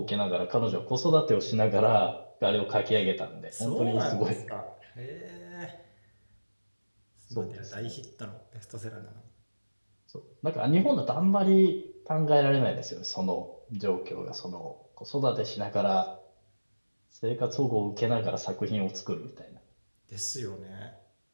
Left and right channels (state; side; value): inverted; both; correlation -1.00